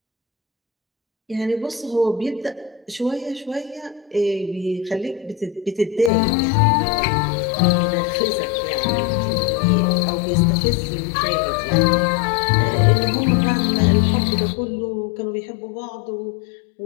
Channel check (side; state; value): right; drops out; at 6.1 s